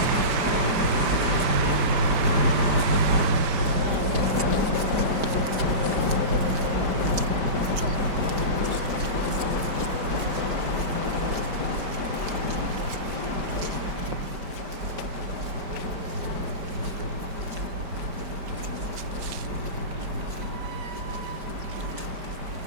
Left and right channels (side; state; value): left; late; 5.0 ms